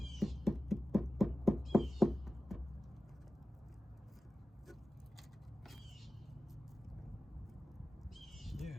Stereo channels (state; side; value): normal; both; correlation 0.95